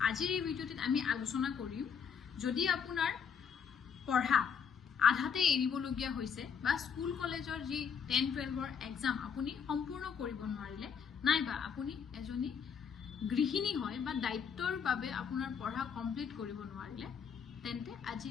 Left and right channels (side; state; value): right; quieter; 7.0 dB